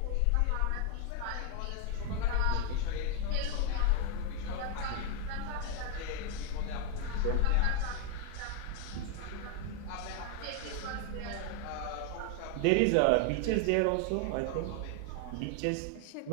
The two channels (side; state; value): both; different; correlation 0.01